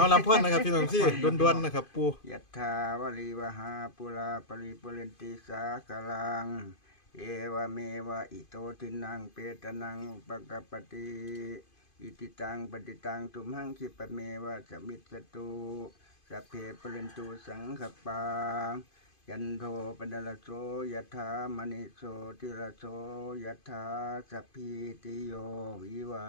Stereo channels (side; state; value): right; late; 2.5 ms